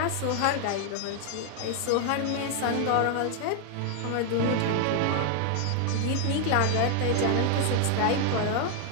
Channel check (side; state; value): both; different; correlation 0.00